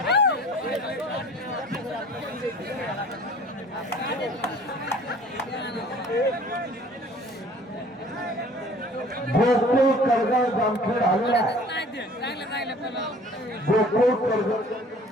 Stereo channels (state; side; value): normal; both; correlation 0.50